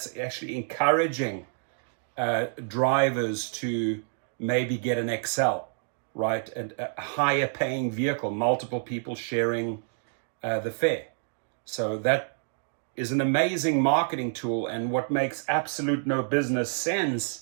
actually encouraging drivers to maybe get an XL, right? A higher paying vehicle, multiple people sharing the fare. So that is an amazing marketing tool. And what makes absolute no business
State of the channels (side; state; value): left; silent; digital silence